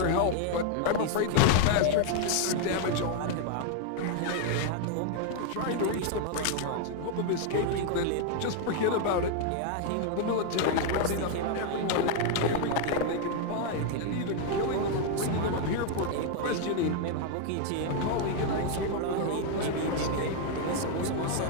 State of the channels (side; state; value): both; different; correlation 0.00